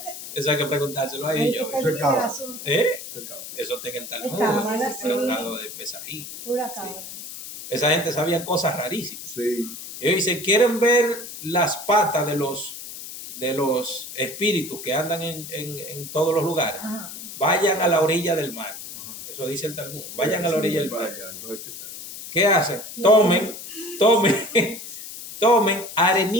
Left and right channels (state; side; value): noise; left; hiss, 11 dB below the sound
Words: Eso hay que preguntárselo a Hay que ellos. te quede el Pecado. asunto. Pecado. Eso está en el Talmud, Cábala, el sí. tratado de Pesají. Pura cabra. Esa gente sabía cosas rarísimas. Sí. Ellos dicen, quieren ver las patas de los espíritus que andan en todos los lugares. Ajá. Vayan a la orilla del mar. Ajá. Eso dice el Talmud. Vayan a la orilla del Para mar. allá, entonces, ¿qué se hace? ¿Qué hacen? Tomen